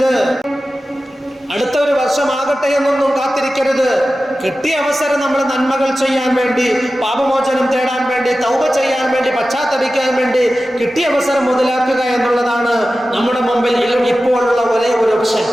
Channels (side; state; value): both; normal; correlation 0.94